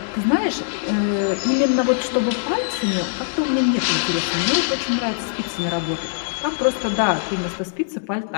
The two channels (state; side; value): silent; right; digital silence